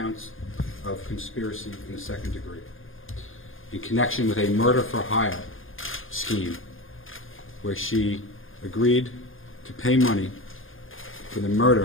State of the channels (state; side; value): late; right; 0.59 ms